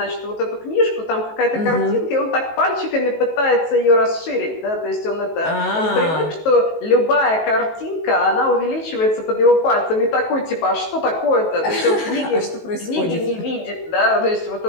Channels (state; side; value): late; right; 19 ms